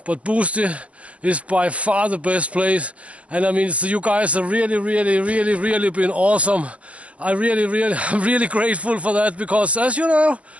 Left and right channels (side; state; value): left; late; 0.064 ms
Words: but Boosty is by far the best place, and I mean, so you guys have really been awesome. I'm really grateful for that, because as you know,